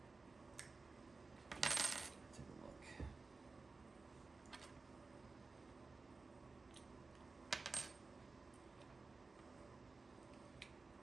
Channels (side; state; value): left; quieter; 3.9 dB